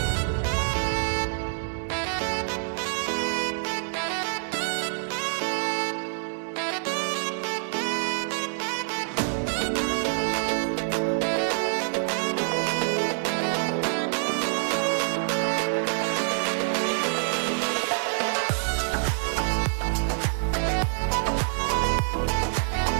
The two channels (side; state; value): left; silent; digital silence